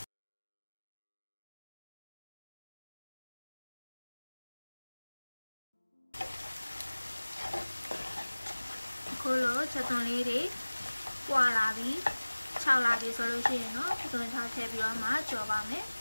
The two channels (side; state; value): both; inverted; correlation -1.00